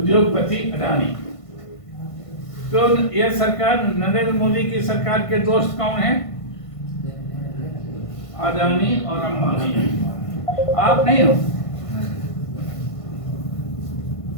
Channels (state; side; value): late; right; 1.5 ms